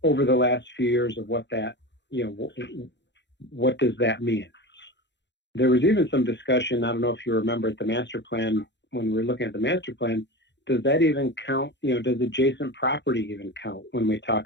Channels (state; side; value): late; right; 0.52 ms